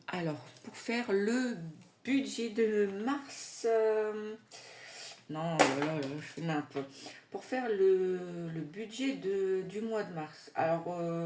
budget de mars. Non, je fais n'importe. Pour faire le budget du mois de mars. Alors,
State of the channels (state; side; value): identical; both; correlation 1.00